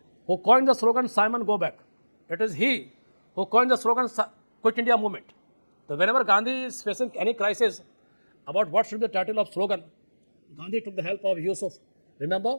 who coined the slogan Simon Go Back. It is he who coined the slogan Quit India Movement. So whenever Gandhi is facing any crisis about what should be the title of slogan, Gandhi took the help of Yusuf.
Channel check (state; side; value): inverted; both; correlation -1.00